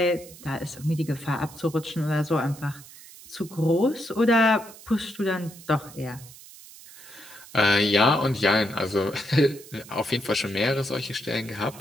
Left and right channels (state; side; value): noise; right; hiss, 19 dB below the sound